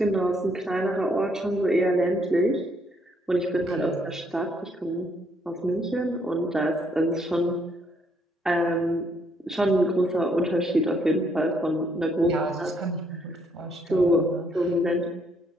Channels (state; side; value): normal; both; correlation 0.70